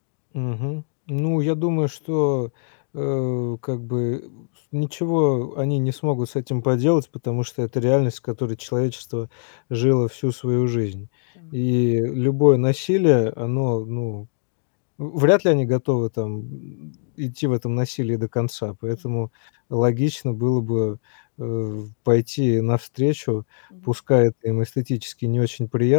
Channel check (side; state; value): right; silent; digital silence